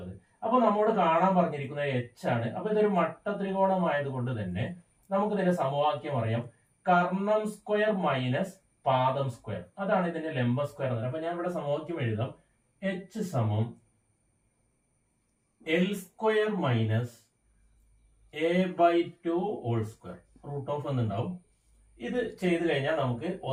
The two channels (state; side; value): identical; both; correlation 1.00